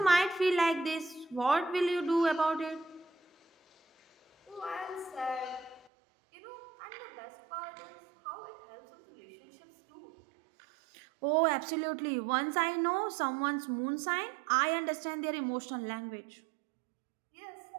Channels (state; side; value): drops out; left; at 5.9 s